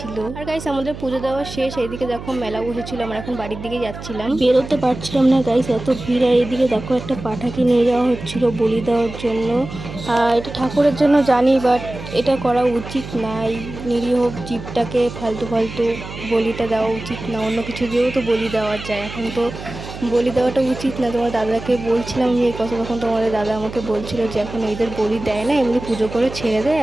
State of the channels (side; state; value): right; noise; hum, 11 dB below the sound